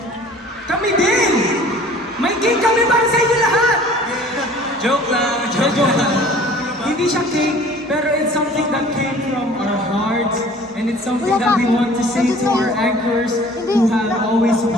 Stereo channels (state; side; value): normal; both; correlation 0.49